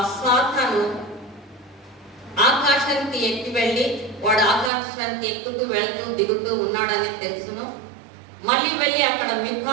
సాతాను ఆకాశానికి ఎక్కి వెళ్ళి వాడు ఆకాశానికి ఎక్కుతూ వెళ్తూ దిగుతూ ఉన్నాడని తెలుసును. మళ్ళీ వెళ్ళి అక్కడ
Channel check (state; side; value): drops out; left; at 4.7 s